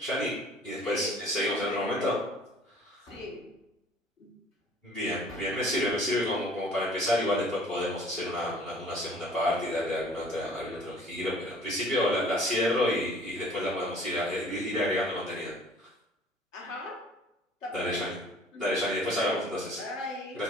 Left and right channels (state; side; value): normal; both; correlation 0.52